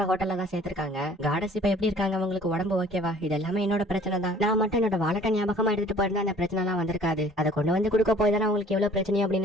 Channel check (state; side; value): normal; both; correlation 0.53